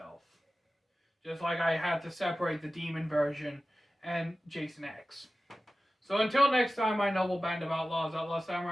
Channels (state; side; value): normal; both; correlation 0.95